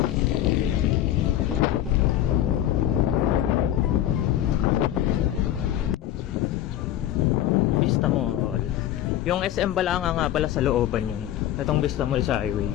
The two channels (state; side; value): quieter; right; 12.2 dB